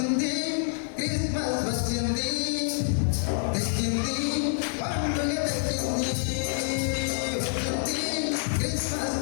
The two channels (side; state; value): right; silent; 60 dB below the other